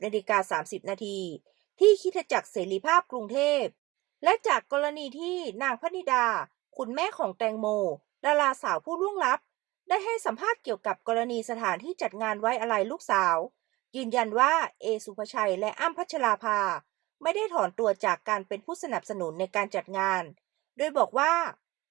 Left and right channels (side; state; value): left; quieter; 20.0 dB